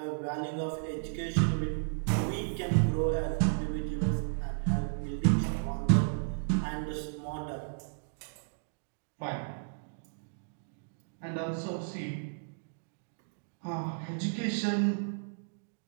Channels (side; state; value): left; silent; digital silence